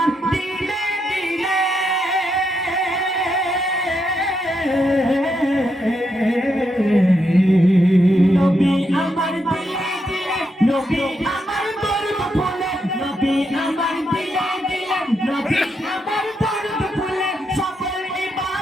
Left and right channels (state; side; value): normal; both; correlation 0.81